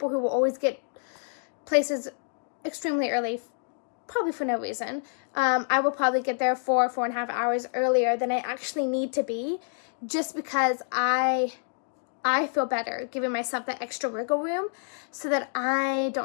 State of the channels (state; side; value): silent; right; digital silence